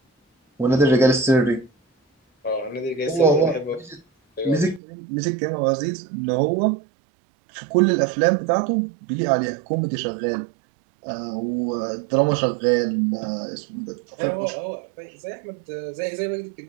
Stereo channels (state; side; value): drops out; left; at 4.8 s